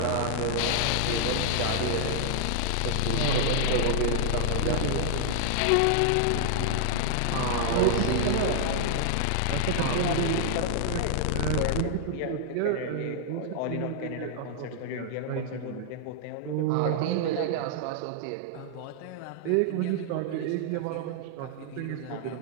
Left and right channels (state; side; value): different; both; correlation -0.01